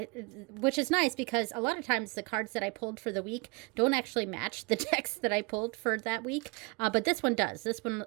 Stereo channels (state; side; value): quieter; left; 29.0 dB